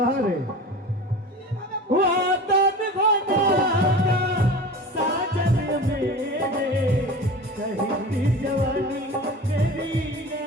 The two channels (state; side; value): normal; both; correlation 0.34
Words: রে वादन भगाना साजन मेरे कहती जवानी तेरी